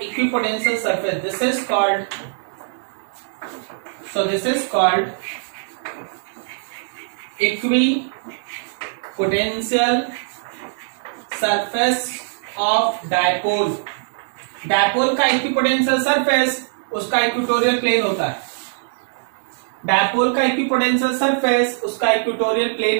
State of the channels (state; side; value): silent; left; digital silence